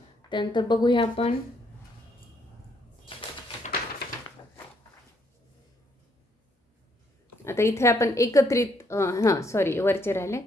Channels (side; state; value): both; normal; correlation 0.71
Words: त्यानंतर बघूया आपण आता इथे आपण एकत्रित वरचे राहिले